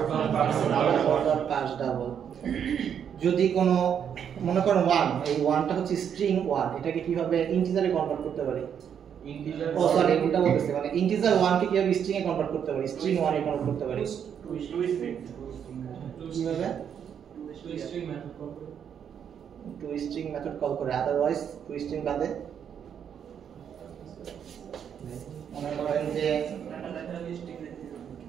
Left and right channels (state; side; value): quieter; left; 8.3 dB